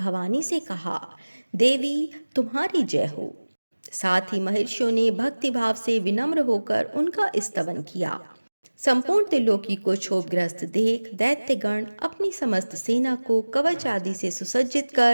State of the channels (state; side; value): inverted; both; correlation -1.00